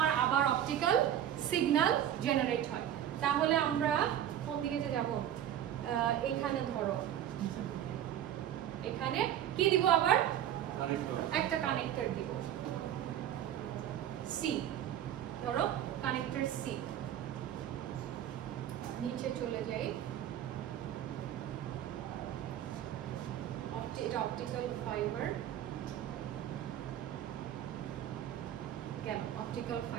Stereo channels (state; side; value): quieter; left; 10.9 dB